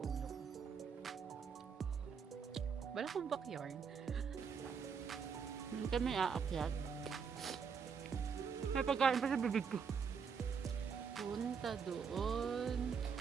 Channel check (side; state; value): left; quieter; 6.3 dB